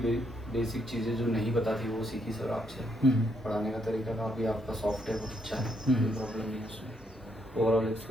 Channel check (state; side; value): normal; both; correlation 0.75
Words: बेसिक चीज़ें जो नहीं पता थी वो सीखी सर आपसे। पढ़ाने का तरीका काफ़ी आपका सॉफ्ट है, बहुत अच्छा है, कोई प्रॉब्लम नहीं है उसमें। Overall